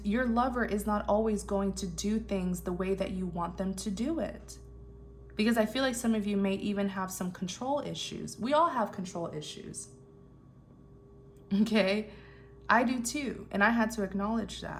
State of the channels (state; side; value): identical; both; correlation 1.00